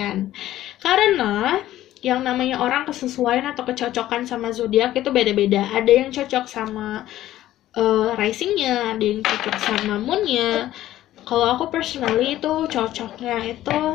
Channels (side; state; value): right; quieter; 13.9 dB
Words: Karena yang namanya orang kesesuaian atau kecocokan sama zodiak itu beda-beda. Ada yang cocok sama risingnya, ada yang cocok sama moonnya. Kalau aku personally itu cocoknya itu